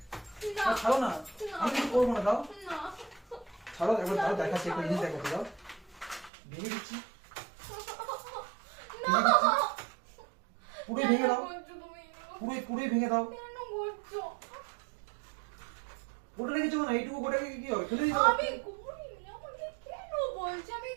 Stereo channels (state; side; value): drops out; left; at 6.3 s